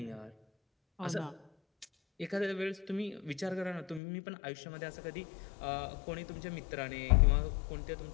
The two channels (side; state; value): right; drops out; at 4.0 s